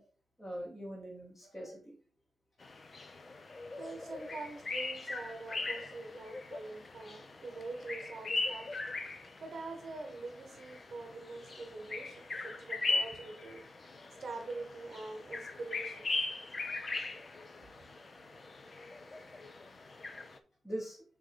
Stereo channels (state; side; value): normal; both; correlation 0.91